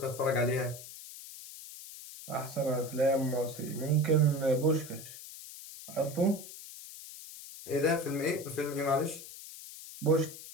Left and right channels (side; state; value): left; noise; hiss, 14 dB below the sound